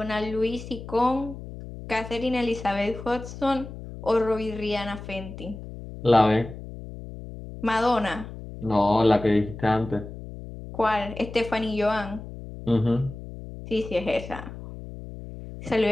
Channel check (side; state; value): left; noise; hum, 12 dB below the sound